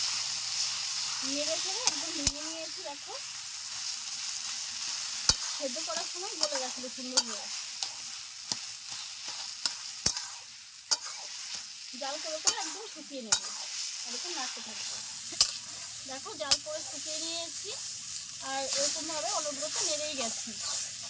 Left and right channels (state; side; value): identical; both; correlation 1.00